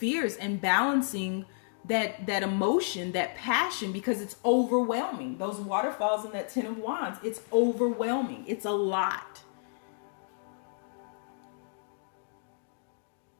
and balancing that emotion, that passion, because it's overwhelming. Those waterfalls in that Ten of Wands, it's overwhelming. It's a lot.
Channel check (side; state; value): right; silent; digital silence